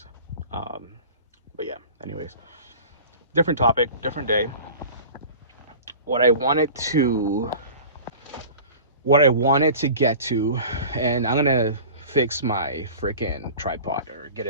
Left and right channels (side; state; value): both; inverted; correlation -0.39